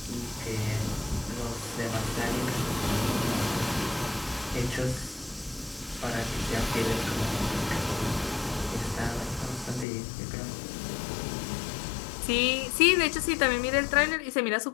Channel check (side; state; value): right; drops out; at 9.9 s